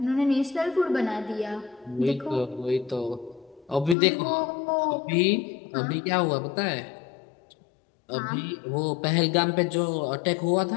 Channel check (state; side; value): drops out; right; at 4.0 s